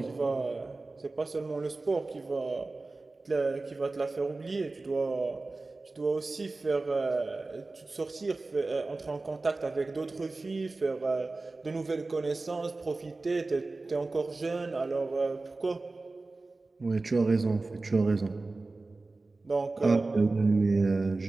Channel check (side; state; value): left; quieter; 3.4 dB